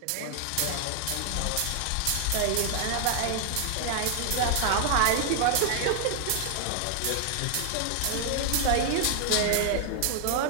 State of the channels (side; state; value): both; different; correlation 0.00